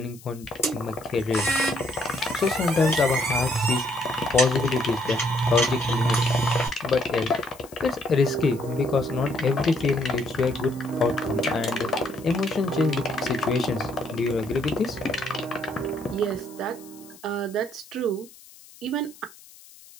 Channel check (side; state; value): left; noise; hiss, 22 dB below the sound